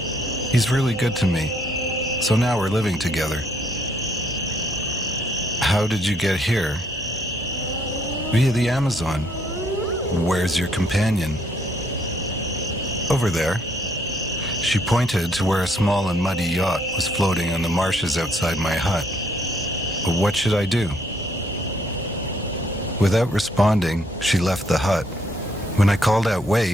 He's really good to me, so now we're living together." "How did you get here?" "Via the Amazon." "Where's your companion?" "Over there." She pointed to where a small and muddy yacht was floating on the marshes outside my hut. But what should I do? Without responding, she left the hut. When I called out,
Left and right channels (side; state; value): both; normal; correlation 0.68